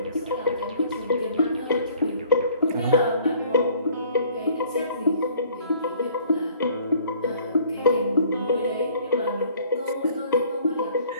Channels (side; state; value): both; inverted; correlation -0.56